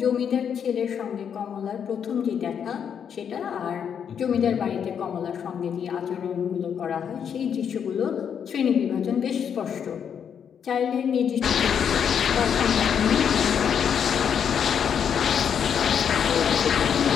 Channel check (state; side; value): quieter; right; 7.8 dB